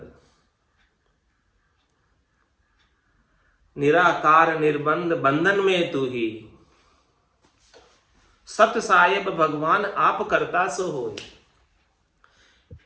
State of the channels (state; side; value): identical; both; correlation 1.00